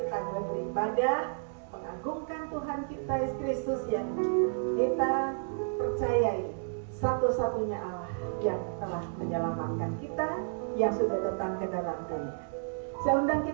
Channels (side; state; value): left; silent; 57 dB below the other